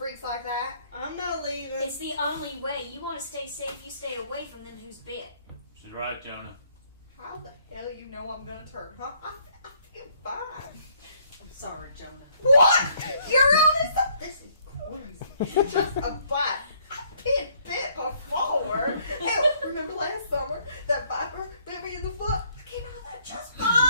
like that. I'm not leaving. It's the only way. You want to stay safe, you stay away from them who's bit. She's right, Jonah. How the hell you know I'm gonna turn, huh? I feel fine. I'm sorry, Jonah. What? You're honest? This is crazy. Just a bite. I've been bit before. Hell, remember last summer? That viper bit me in the foot? I came out of that just fine.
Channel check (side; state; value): both; inverted; correlation -0.66